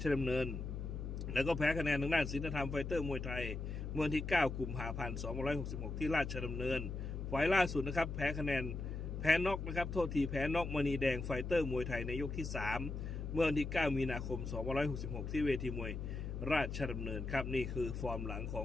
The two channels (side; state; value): left; noise; hum, 5 dB below the sound